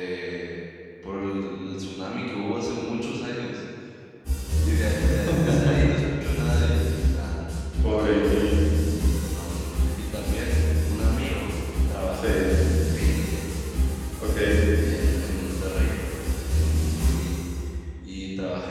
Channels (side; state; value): both; identical; correlation 1.00